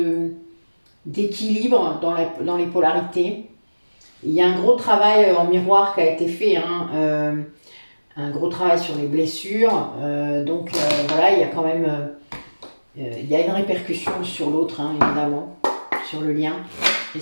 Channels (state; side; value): inverted; both; correlation -1.00